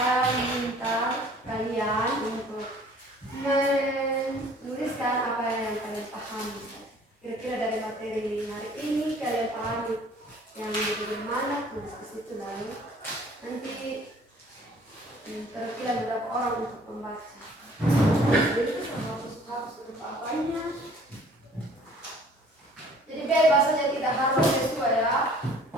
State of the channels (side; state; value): both; normal; correlation 0.53